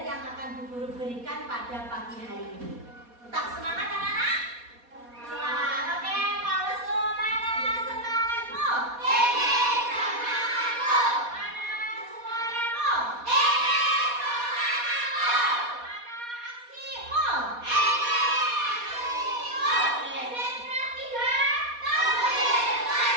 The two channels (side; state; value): left; late; 4.2 ms